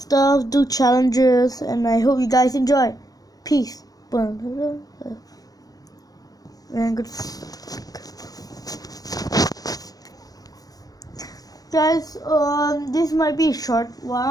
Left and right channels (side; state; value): right; late; 0.18 ms